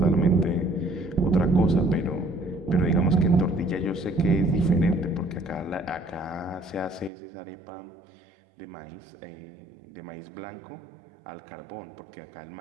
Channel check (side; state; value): left; drops out; at 7.1 s